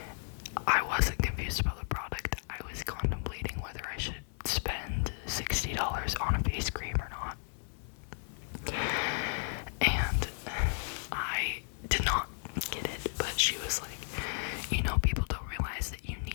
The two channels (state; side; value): silent; right; digital silence